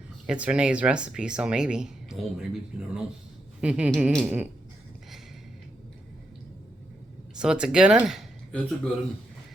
It's Renee's recipe, so maybe. Oh, maybe. You never know. So it's a good one? It's a good one.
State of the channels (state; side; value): normal; both; correlation 0.82